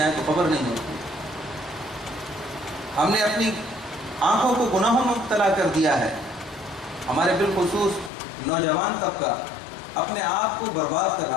تو خبر نہیں ہوتی۔ ہم نے اپنی آنکھوں کو گناہوں میں مبتلا کر دیا ہے۔ ہمارے بالخصوص نوجوان طبقہ اپنے آپ کو برباد کر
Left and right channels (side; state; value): right; drops out; at 8.1 s